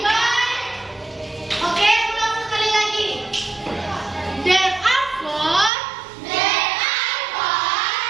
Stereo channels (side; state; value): left; drops out; at 5.7 s